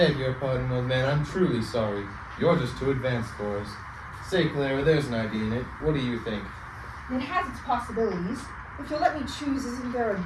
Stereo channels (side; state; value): both; identical; correlation 1.00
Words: your pardon, old man. I'm truly sorry. You're just too advanced for us. Say, Clara, there's an idea in it. What do you think? It has its possibilities. If you'll let me choose, isn't there